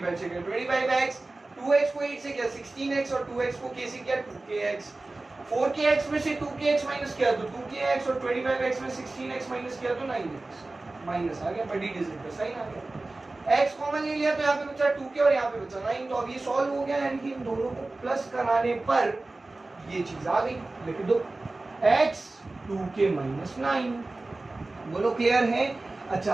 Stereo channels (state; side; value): quieter; left; 3.1 dB